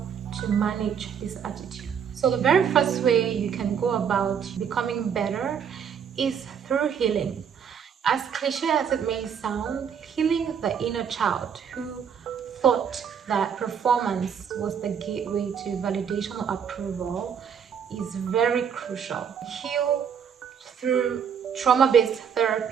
to manage this attitude. So the very first way you can go about becoming better is through healing. As cliche as it may sound, healing the inner child who thought that performance was the gateway to validation or approval is very crucial. Heal through trauma-based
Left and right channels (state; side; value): quieter; left; 7.5 dB